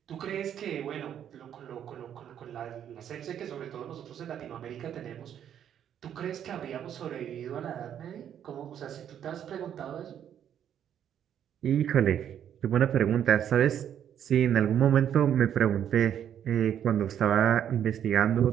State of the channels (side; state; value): left; quieter; 9.6 dB